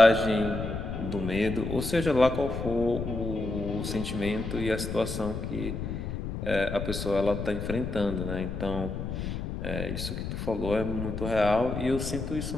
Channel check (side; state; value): left; noise; rumble, 5 dB below the sound